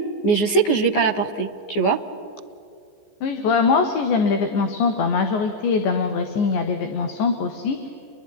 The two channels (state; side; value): late; right; 14 ms